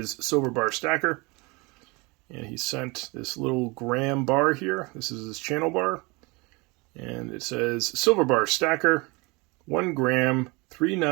Silver Bar Stacker. And he sent this little gram bar here. This is his channel bar. And it says, Silver Bar Stacker, 1 gram, 3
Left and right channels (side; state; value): left; quieter; 26.7 dB